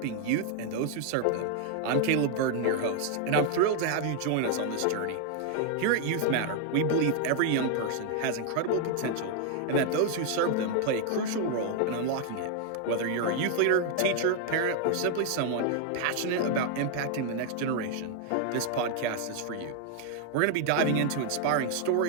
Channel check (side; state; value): both; different; correlation 0.00